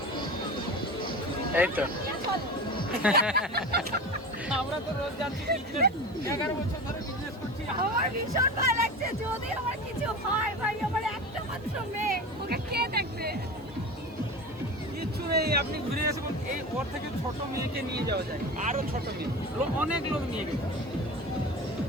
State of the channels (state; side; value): noise; right; hiss, 30 dB below the sound